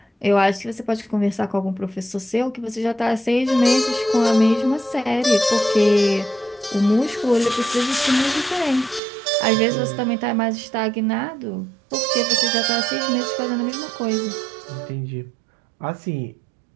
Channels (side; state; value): left; drops out; at 9.0 s